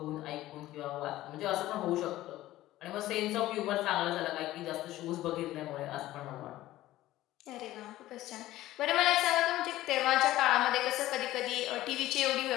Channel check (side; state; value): right; quieter; 15.5 dB